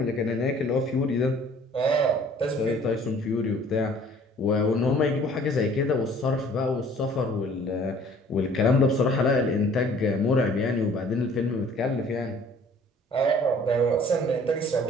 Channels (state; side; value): normal; both; correlation 0.53